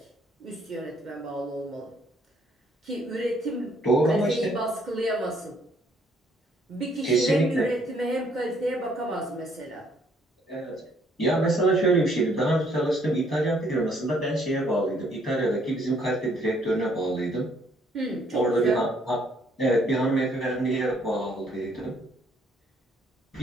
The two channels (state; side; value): normal; both; correlation 0.66